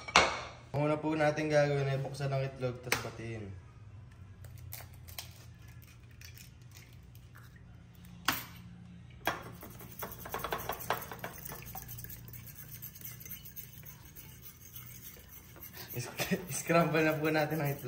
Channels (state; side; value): identical; both; correlation 1.00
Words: Ang una po natin gagawin ay buksan ng itlog, tapos batiin. Scramble na po natin ang